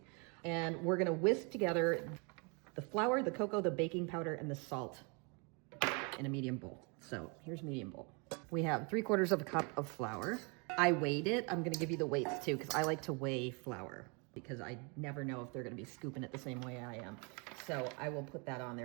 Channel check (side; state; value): left; quieter; 32.9 dB